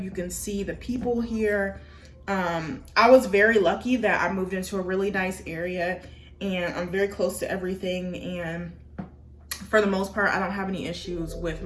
you can see the people here. I was very lucky that I moved into a really nice area, and I'm very close to everything, and for the most part, I don't have any issues with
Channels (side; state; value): both; identical; correlation 1.00